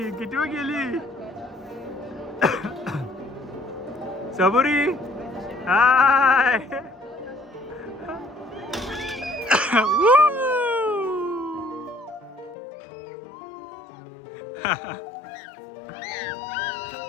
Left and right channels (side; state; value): right; drops out; at 12.6 s